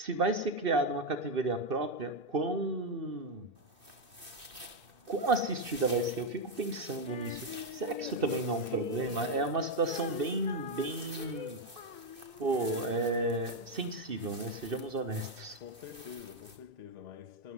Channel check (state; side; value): late; left; 2.6 ms